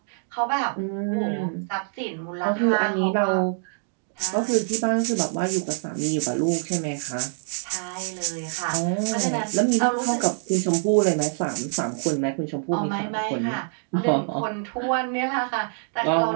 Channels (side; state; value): left; silent; digital silence